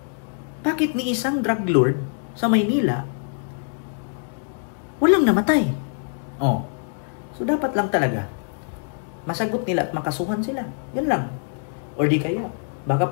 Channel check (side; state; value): right; silent; digital silence